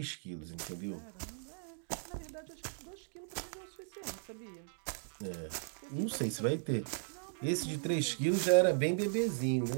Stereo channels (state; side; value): silent; left; digital silence